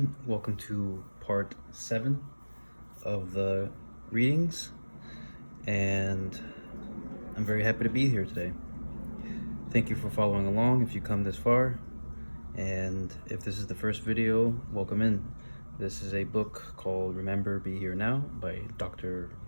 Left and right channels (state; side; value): inverted; both; correlation -1.00